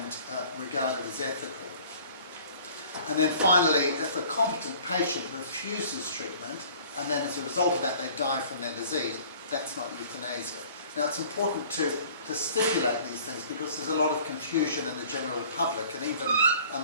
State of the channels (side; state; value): both; inverted; correlation -0.50